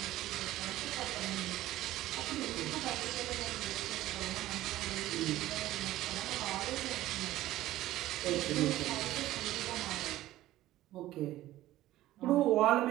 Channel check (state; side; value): quieter; left; 15.2 dB